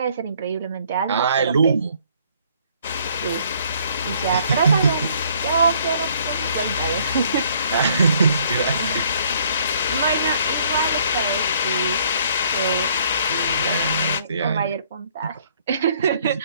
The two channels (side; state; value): both; inverted; correlation -0.62